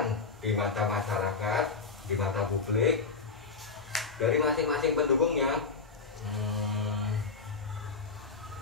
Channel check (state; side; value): quieter; right; 4.8 dB